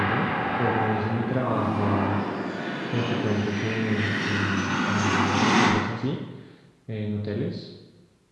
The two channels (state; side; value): identical; both; correlation 1.00